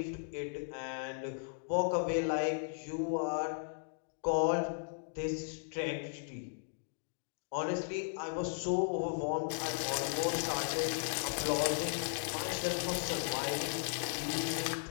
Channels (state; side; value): silent; right; digital silence